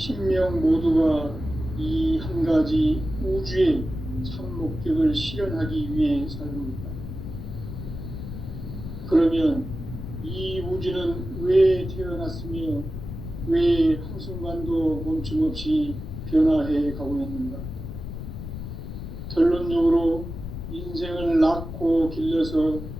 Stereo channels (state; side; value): noise; left; rumble, 8 dB below the sound